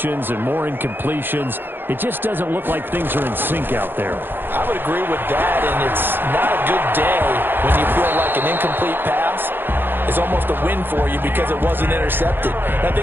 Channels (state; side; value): late; left; 0.10 ms